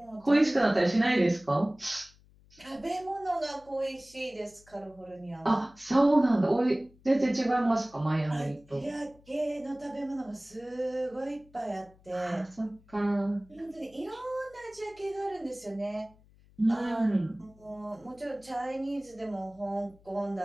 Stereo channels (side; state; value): left; noise; hum, 27 dB below the sound